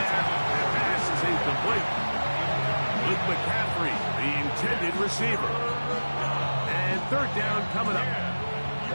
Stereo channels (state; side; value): inverted; both; correlation -1.00